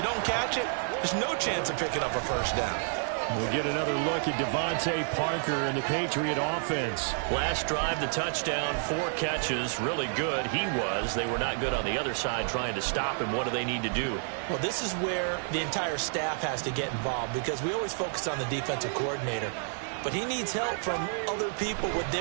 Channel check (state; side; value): silent; left; 58 dB below the other